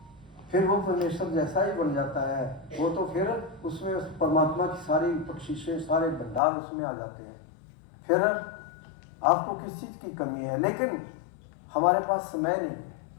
फिर वो परमेश्वर जैसा ही बन जाता है। वो तो फिर उसमें उस परमात्मा की सारी बख्शिशें, सारे भंडार उसमें आ जाते हैं। फिर आपको किस चीज़ की कमी है, लेकिन हमारे पास समय नहीं,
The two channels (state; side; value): drops out; right; at 6.4 s